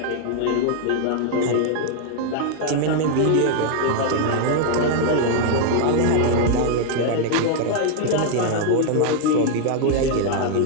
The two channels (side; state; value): both; different; correlation 0.00